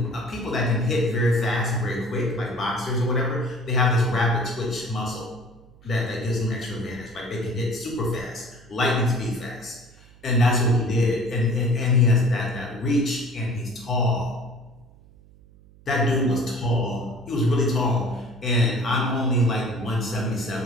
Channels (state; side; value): noise; right; hum, 25 dB below the sound